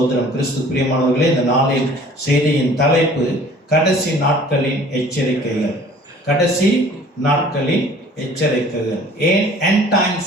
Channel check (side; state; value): both; normal; correlation 0.50